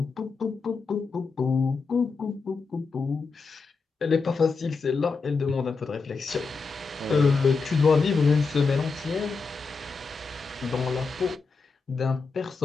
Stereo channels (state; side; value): quieter; right; 4.5 dB